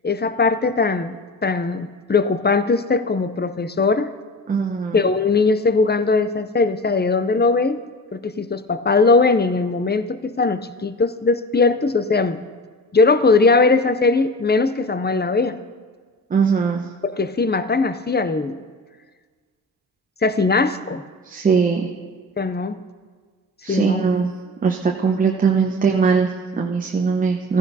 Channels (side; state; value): both; normal; correlation 0.33